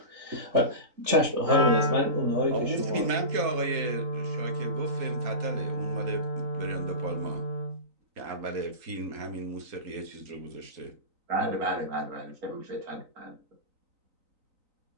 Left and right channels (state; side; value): late; left; 3.9 ms